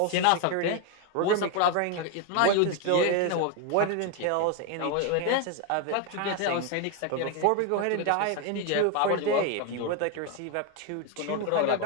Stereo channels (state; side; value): different; both; correlation 0.01